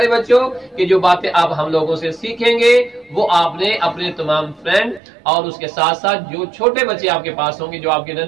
बच्चों कि जो बातें आप हम लोगों से सीखेंगे वो आपने अपने तमाम फ्रेंड और उसके साथ साथ जो छोटे बच्चे आपके पास होंगे, जो आपके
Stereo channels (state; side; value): drops out; left; at 5.0 s